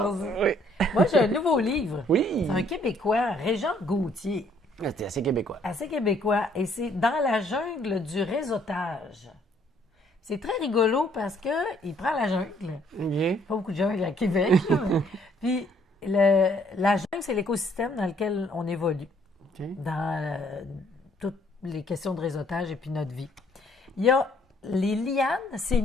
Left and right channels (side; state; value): both; normal; correlation 0.64